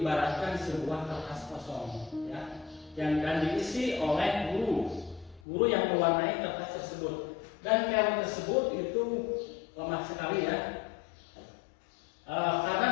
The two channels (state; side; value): drops out; right; at 5.4 s